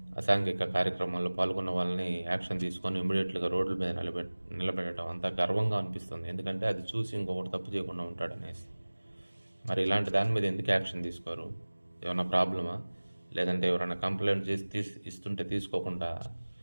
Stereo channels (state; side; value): inverted; both; correlation -1.00